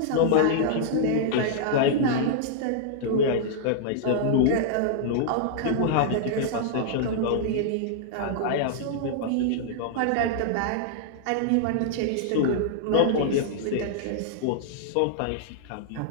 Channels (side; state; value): both; different; correlation -0.01